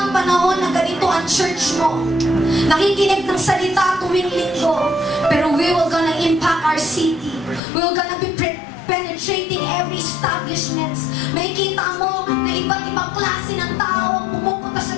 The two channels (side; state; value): right; drops out; at 7.6 s